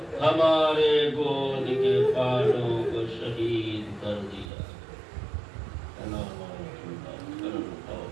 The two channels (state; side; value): drops out; left; at 4.5 s